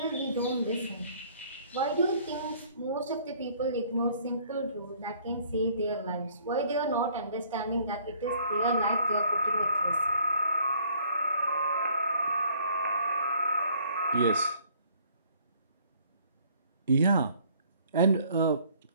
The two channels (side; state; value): both; inverted; correlation -0.59